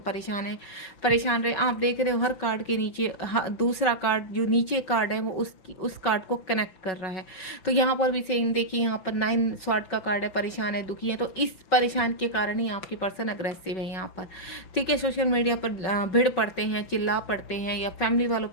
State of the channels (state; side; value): late; right; 5.9 ms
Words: रहे। आप देख रहे हो हर कार्ड के नीचे दूसरा कार्ड, जो नीचे कार्ड है वो उस कार्ड को कनेक्ट कर रहा है। तो यहाँ पर भी सेम देखिए, यहाँ पर 9 स्वॉर्ड का कार्ड है, परेशान है, दुखी है। तो इस परेशान के कारण ही आपके पर्सन अग्रेसिव है यहाँ पर। ठीक है, सोशल मीडिया पर भिड़ पड़ते हैं, चिल्ला पड़ते हैं, या फैमिली वालों